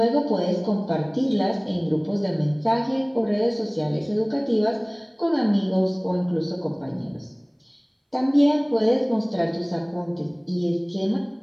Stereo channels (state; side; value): identical; both; correlation 1.00